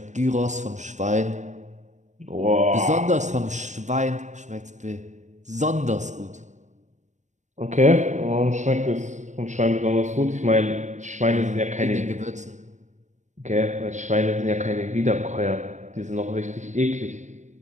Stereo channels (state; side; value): late; left; 0.35 ms